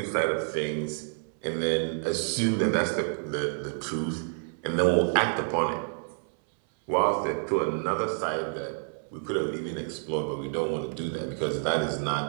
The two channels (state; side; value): silent; left; 59 dB below the other